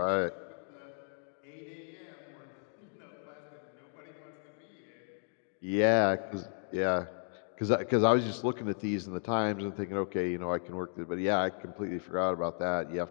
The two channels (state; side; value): silent; right; 55 dB below the other